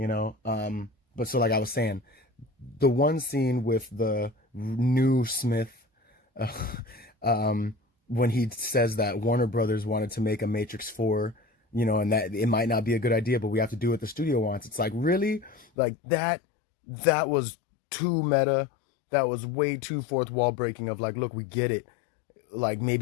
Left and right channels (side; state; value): right; drops out; at 15.7 s